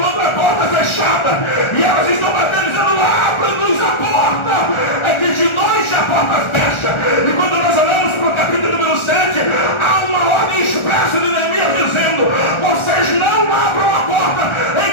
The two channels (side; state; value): right; late; 1.4 ms